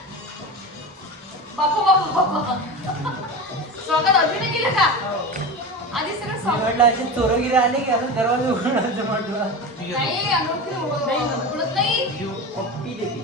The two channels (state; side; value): normal; both; correlation 0.26